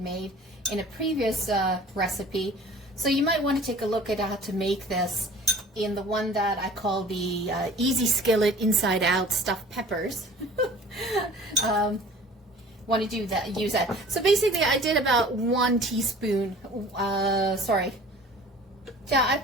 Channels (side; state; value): both; normal; correlation 0.46